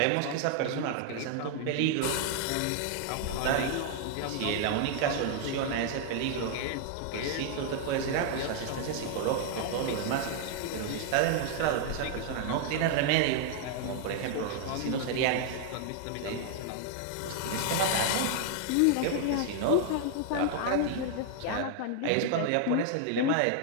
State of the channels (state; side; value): different; both; correlation 0.00